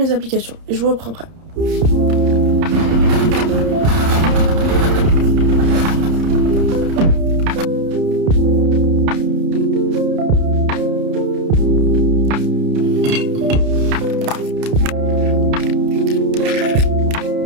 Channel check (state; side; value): late; left; 30 ms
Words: applications. Et je vous reprends après.